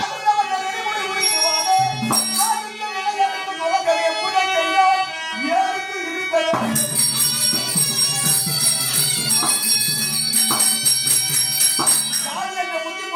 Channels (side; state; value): both; identical; correlation 1.00